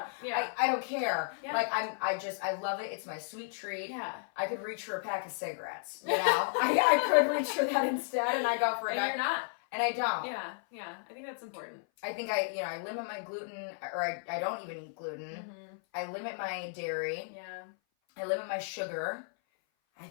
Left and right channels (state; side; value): silent; right; 55 dB below the other